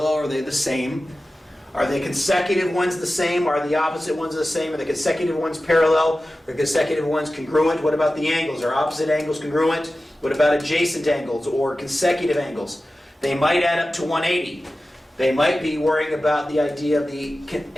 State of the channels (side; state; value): both; normal; correlation 0.95